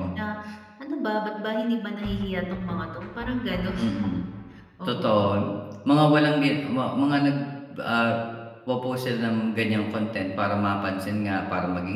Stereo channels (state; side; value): identical; both; correlation 1.00